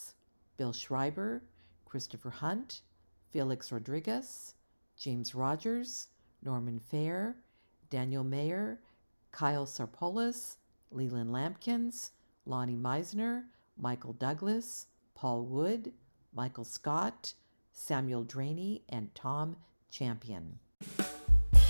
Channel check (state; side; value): inverted; both; correlation -1.00